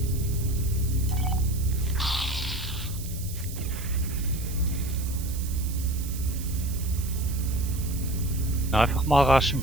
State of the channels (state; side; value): noise; right; hiss, 12 dB below the sound